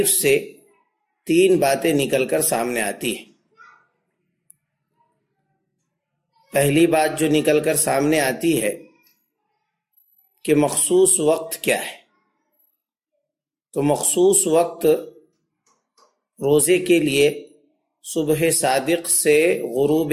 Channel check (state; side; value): identical; both; correlation 1.00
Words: سے تین باتیں نکل کر سامنے آتی ہیں۔ پہلی بات جو نکل کر سامنے آتی ہے کہ مخصوص وقت کیا ہے، تو مخصوص وقت روزے کے لیے صبح صادق سے